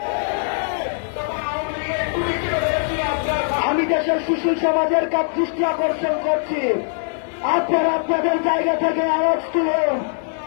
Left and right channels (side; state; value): right; silent; digital silence